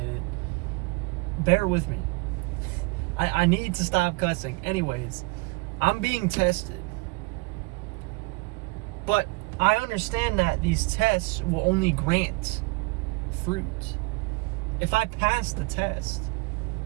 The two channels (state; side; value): quieter; left; 26.6 dB